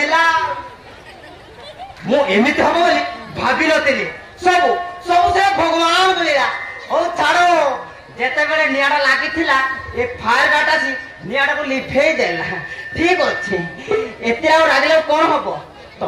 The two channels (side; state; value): both; identical; correlation 1.00